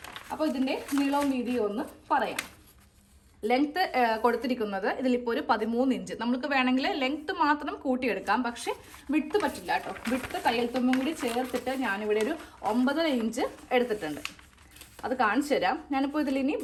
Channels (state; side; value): identical; both; correlation 1.00